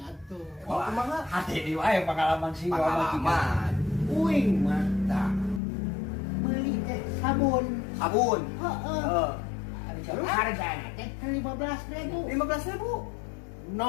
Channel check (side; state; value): right; drops out; at 5.6 s